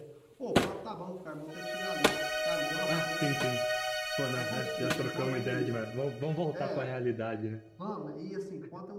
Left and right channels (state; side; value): identical; both; correlation 1.00